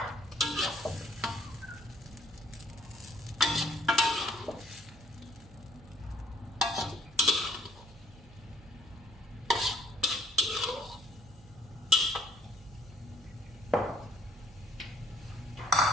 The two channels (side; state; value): right; noise; hum, 21 dB below the sound